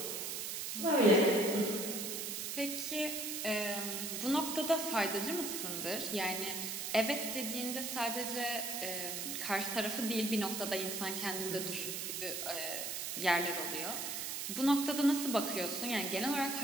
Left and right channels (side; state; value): right; noise; hiss, 3 dB below the sound